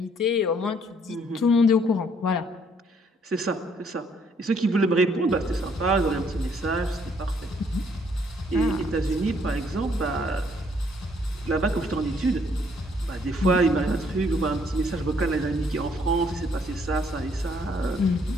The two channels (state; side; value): normal; both; correlation 0.66